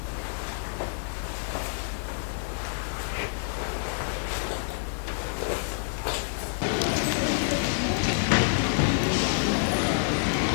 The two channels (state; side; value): silent; right; digital silence